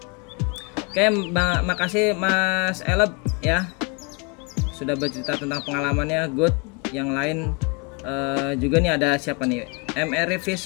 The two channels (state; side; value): quieter; right; 29.9 dB